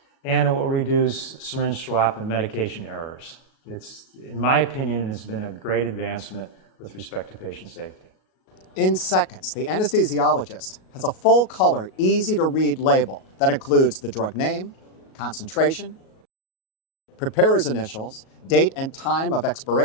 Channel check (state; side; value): late; right; 37 ms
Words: and it will reduce syringe swap and medication errors. It's, in my opinion, has been a great advancement with respect to patient safety. In seconds, the anesthesiologist has a full-color, easy-to-read label that includes the drug name, concentration, preparer's initials, date and time of